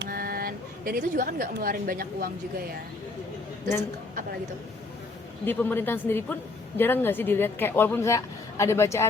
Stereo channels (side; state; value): right; quieter; 3.4 dB